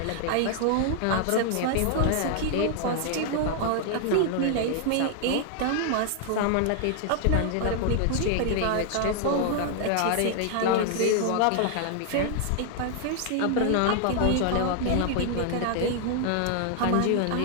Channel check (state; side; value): different; both; correlation 0.00